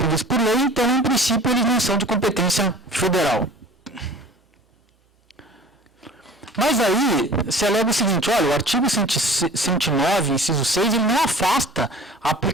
por lei, então, em princípio, eles não são de competência federal. Mas aí se alega o seguinte, olha, o artigo 109, inciso 6, ele não afasta a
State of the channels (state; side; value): normal; both; correlation 0.44